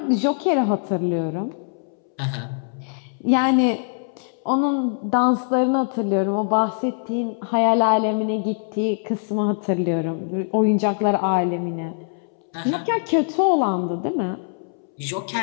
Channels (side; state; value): right; silent; 64 dB below the other